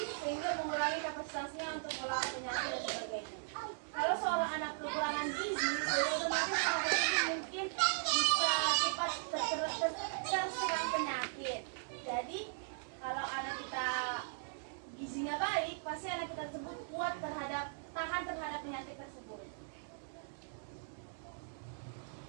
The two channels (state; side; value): silent; left; digital silence